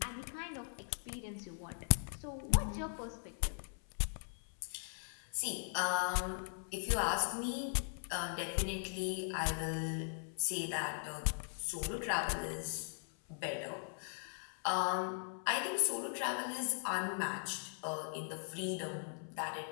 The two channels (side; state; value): right; silent; 51 dB below the other